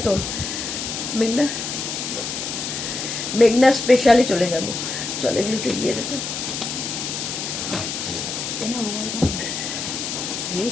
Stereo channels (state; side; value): noise; left; hiss, 4 dB below the sound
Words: তো মেঘনা, মেঘনা স্পেশালে চলে যাব। চলো এগুলো একটু গিয়ে দেখো,